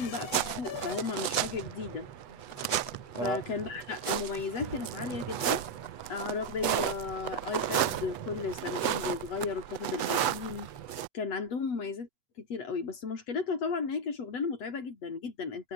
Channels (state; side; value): late; right; 8.1 ms